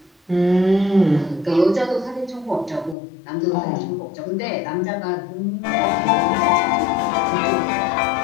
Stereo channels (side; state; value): right; drops out; at 3.0 s